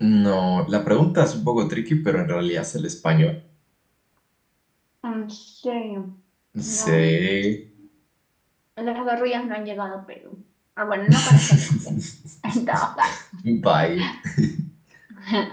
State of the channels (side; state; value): both; identical; correlation 1.00